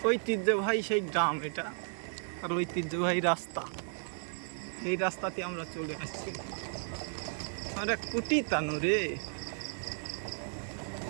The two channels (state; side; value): silent; left; 55 dB below the other